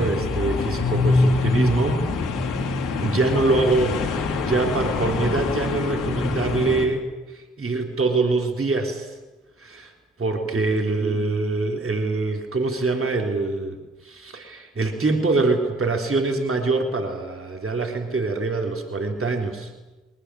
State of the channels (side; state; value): both; normal; correlation 0.60